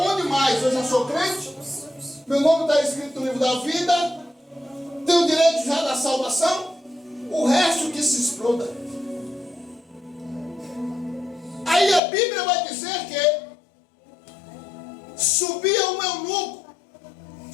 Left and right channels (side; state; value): right; drops out; at 12.0 s